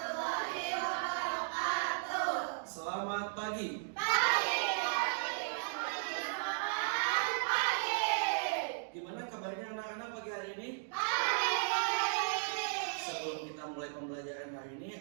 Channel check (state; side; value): silent; left; digital silence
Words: wabarakatuh. Selamat pagi. Pagi. Gimana kabarnya anak-anak pagi hari ini? Sebelum kita mulai pembelajaran hari